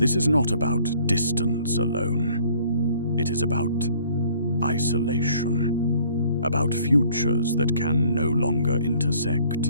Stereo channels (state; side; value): inverted; both; correlation -0.58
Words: is not about distance alone. It is about isolation, about futures that can no longer